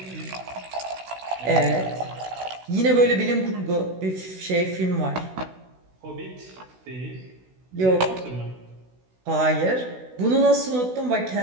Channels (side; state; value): left; late; 16 ms